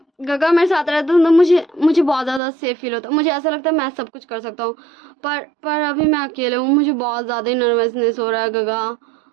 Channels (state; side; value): drops out; left; at 2.4 s